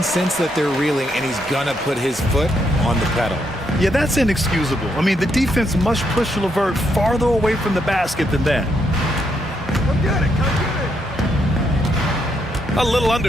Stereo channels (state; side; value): normal; both; correlation 0.77